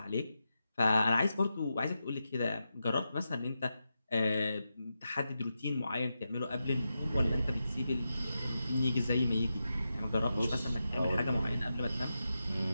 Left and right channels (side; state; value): both; inverted; correlation -0.89